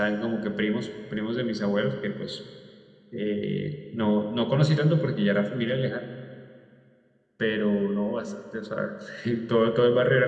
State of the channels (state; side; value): identical; both; correlation 1.00